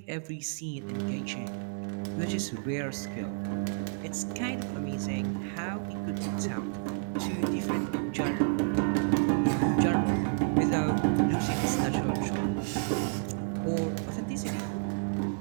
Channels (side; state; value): left; silent; digital silence